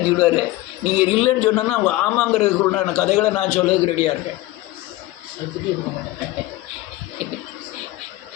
நீங்கள் இல்லைன்னு சொன்னோன்னா அவங்க ஆமாங்கிறதுக்குள்ளான கதைகளை நான் சொல்லதுக்கு ரெடியாக இருக்கேன்.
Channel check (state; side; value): quieter; right; 17.9 dB